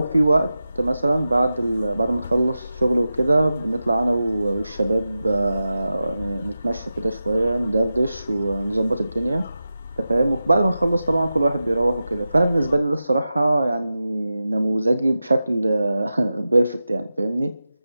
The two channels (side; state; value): both; inverted; correlation -0.93